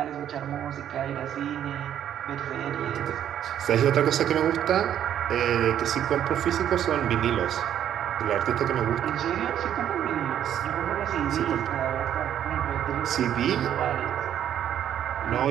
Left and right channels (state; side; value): quieter; left; 10.3 dB